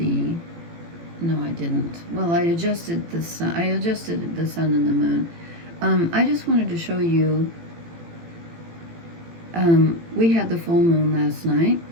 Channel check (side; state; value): left; late; 18 ms